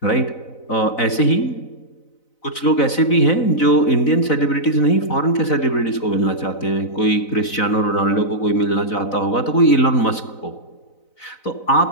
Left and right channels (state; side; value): late; right; 4.0 ms